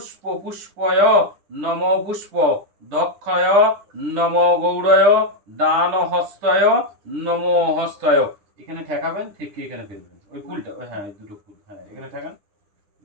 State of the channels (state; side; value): late; left; 9.9 ms